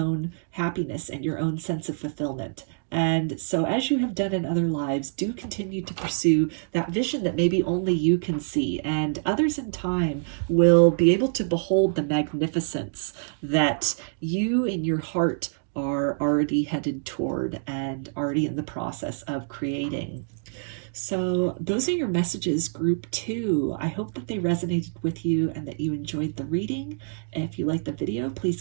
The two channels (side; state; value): left; silent; digital silence